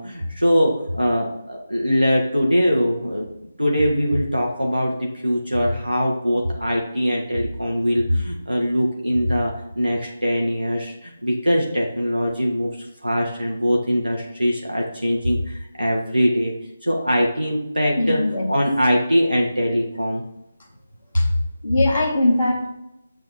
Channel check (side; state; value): both; inverted; correlation -0.94